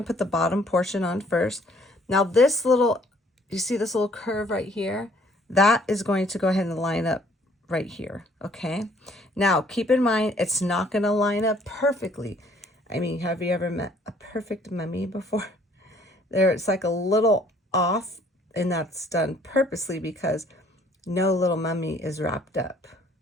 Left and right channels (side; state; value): both; normal; correlation 0.60